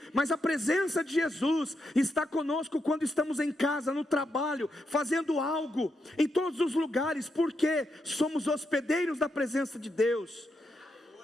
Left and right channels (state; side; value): normal; both; correlation 0.83